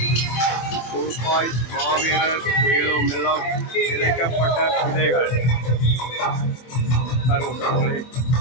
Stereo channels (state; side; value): late; right; 24 ms